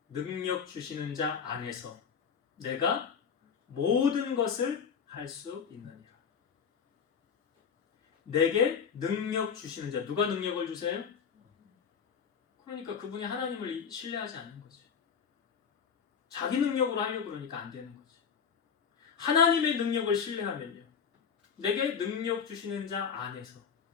능력 주시는 자 안에서 내가 모든 것을 할 수 있느니라. 내게 능력 주시는 자. 누가 능력을 주세요? 그러니까 그분이 하나님을 신뢰하지 않는 거죠. 자기 능력으로 하려고 그러니까 안 되는 거죠. 하나님의 능력을 신뢰하면요. 내게 능력 주시는 자 안에서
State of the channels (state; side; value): quieter; right; 6.8 dB